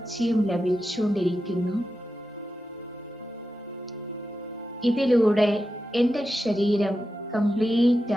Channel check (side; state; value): both; normal; correlation 0.90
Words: ലഭിച്ചുകൊണ്ടിരിക്കുന്നു. ഇതിലൂടെ എൻ്റെ ശരീരം കംപ്ലീറ്റ്